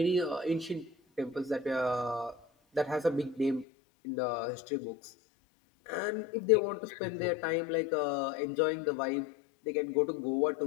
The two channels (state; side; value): drops out; right; at 3.7 s